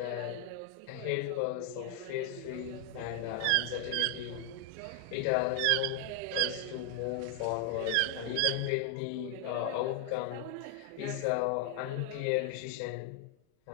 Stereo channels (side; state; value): both; different; correlation 0.00